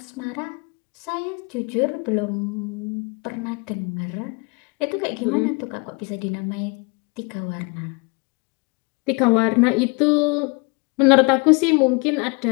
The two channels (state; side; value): quieter; right; 31.3 dB